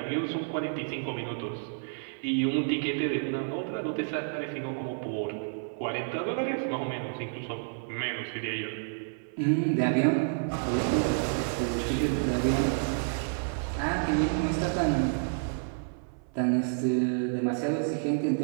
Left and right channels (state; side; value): silent; left; 58 dB below the other